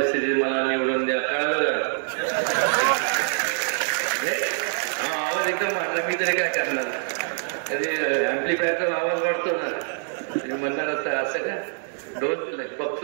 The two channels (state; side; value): silent; left; digital silence